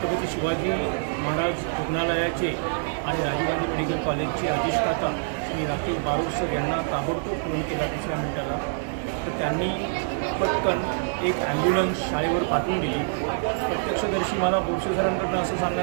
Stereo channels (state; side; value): silent; left; digital silence